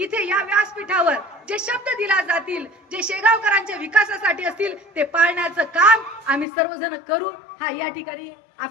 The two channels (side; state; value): right; drops out; at 6.5 s